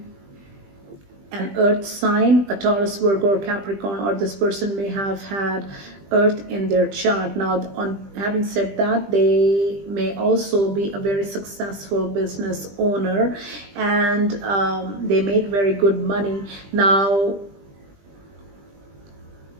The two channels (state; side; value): late; left; 20 ms